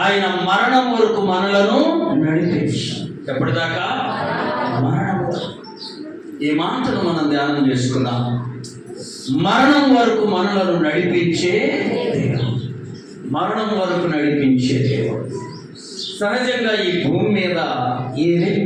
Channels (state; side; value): identical; both; correlation 1.00